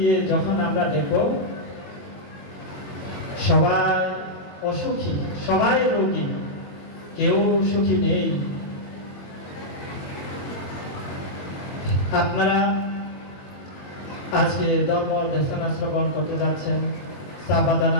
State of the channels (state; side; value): late; right; 21 ms